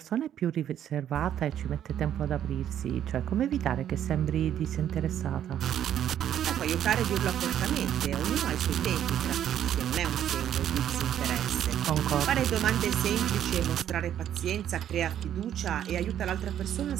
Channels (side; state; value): left; quieter; 10.4 dB